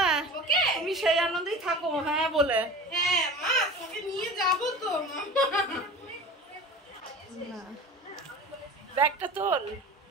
ওকে তুমি সেই আনন্দেই থাকো। হ্যাঁ বলে হ্যাঁ মা, তোমাকে নিয়ে যাব তো না, ব্যাগটা তোল,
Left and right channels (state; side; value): normal; both; correlation 0.35